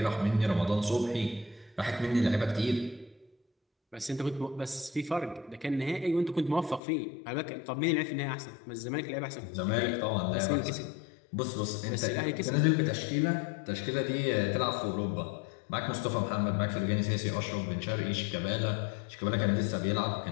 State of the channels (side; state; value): right; drops out; at 6.8 s